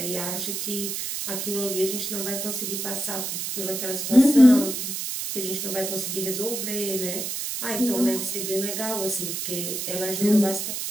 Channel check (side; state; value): right; noise; hiss, 3 dB below the sound